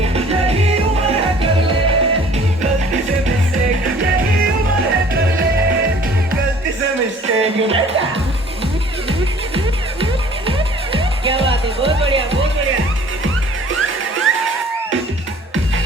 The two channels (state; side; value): normal; both; correlation 0.52